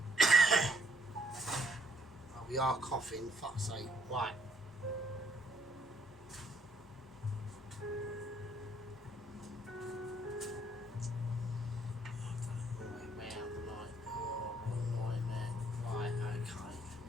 Oh, we are coughing, fuck's sake. Right.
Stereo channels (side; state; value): both; normal; correlation 0.67